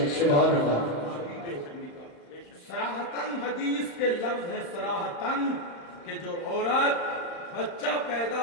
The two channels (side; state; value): right; late; 35 ms